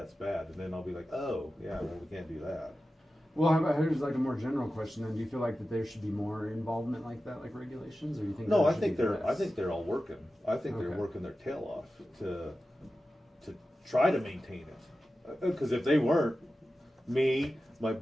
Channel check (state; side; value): normal; both; correlation 0.93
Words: bad, and then I'll be like, oh yeah, well, we can't do that. Well, how about, here's like a more general question then. Do you feel like that there should be more involvement like that, like regulations, or do you think No, there I should think be they're less? all working. I think they're Okay. working their tail off to try to maintain it. Because if they weren't, me, my